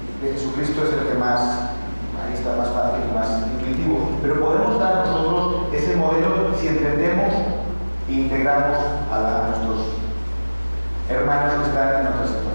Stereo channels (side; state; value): both; inverted; correlation -1.00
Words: de Jesucristo es el que más, ahí está más fácil, más intuitivo, pero podemos dar nosotros ese modelo si entendemos e integramos a nuestros hermanos que están en otras